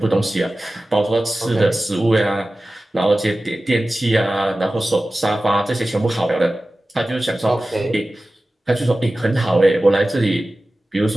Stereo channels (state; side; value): normal; both; correlation 0.96